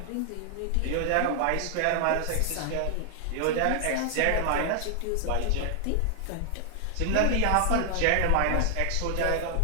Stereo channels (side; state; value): both; different; correlation 0.00